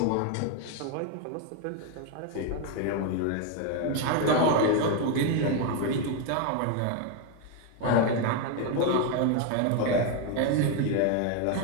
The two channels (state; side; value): different; both; correlation 0.01